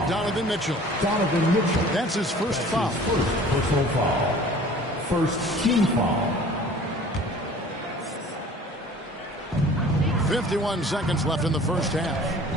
Donovan Mitchell. That's his first foul. First personal foul. First team foul. 51 seconds left in the first half.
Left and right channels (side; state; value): both; normal; correlation 0.47